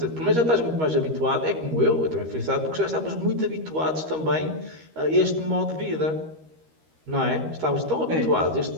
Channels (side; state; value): left; late; 13 ms